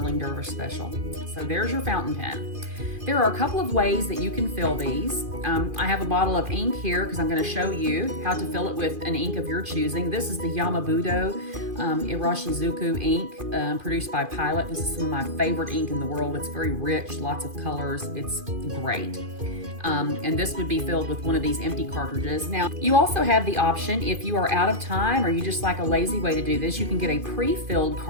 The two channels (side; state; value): left; late; 2.5 ms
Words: Dervish special. So there's your fountain pen. There are a couple of ways that you can fill these. I have a bottle of ink here because I'm going to show you how to fill it with an ink of your choosing. This is the Yamabudo Irashizuku ink produced by Pilot. This is some of my favorite ink in the world. It's very rich, lots of colors. It's great. And this would be filled with one of these empty cartridges. Now, you also have the option, if you are out of time or you just like a lazy way to do this, you can get a pre-filled